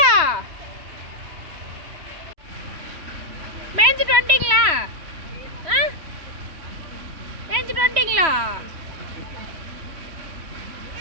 மேய்ஞ்சிட்டு வந்துட்டீங்களா? மேய்ஞ்சிட்டு வந்துட்டீங்களா?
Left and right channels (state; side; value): late; left; 3.1 ms